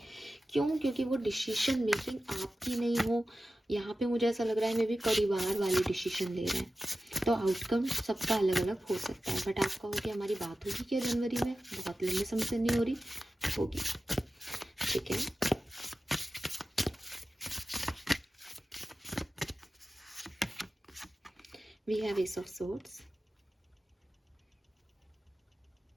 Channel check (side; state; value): both; normal; correlation 0.94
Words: क्यों? क्योंकि वो डिसीजन मेकिंग आपकी नहीं हो। यहाँ पे मुझे ऐसा लग रहा है मे भी परिवार वाले डिसीजन ले रहे हैं, तो आउटकम सबका अलग अलग हो सकता है। बट आप कहोगे हमारी बात होगी क्या जनवरी में? बहुत लंबे समय से नहीं हो रही, होगी, ठीक है। We have Ace of Swords,